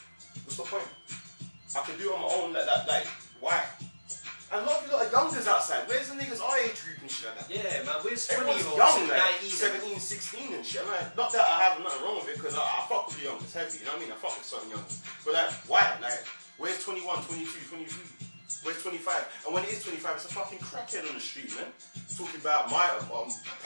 What's the point? I can do it on my own like that. Like why? And a lot of you lot are youngers outside. Where's the niggas our age group and shit like that? Yeah, man, where's Everyone's 20-year-olds, young, like 19? 17, 16 and shit. I'm like, not that I have nothing wrong with it, because I fuck with the youngers heavy, you know what I mean? I fuck with certain youngers. But like, why? Like, where's 21, 22, 23? Where's 25? And when it is 25, it's a fucking crackhead on the street, man. Talking about my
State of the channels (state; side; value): inverted; both; correlation -1.00